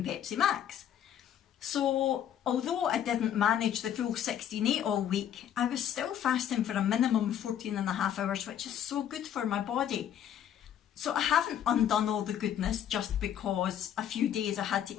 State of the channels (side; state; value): right; quieter; 10.0 dB